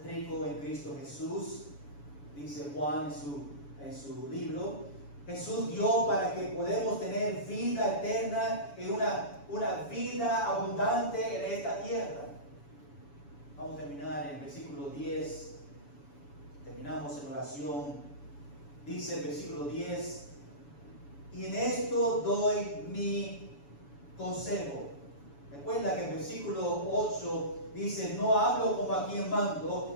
ricos en Cristo Jesús. Dice Juan en su libro. Jesús dio para que podamos tener vida eterna y una vida abundante en esta tierra. Vamos a terminar en el versículo 10. Terminamos en oración. Dice el versículo 10. Y en esto doy mi consejo. Recuerda que el versículo 8 dice, no hablo como a quien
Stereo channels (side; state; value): right; late; 7.0 ms